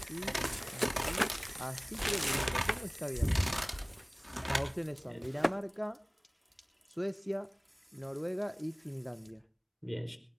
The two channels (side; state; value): both; identical; correlation 1.00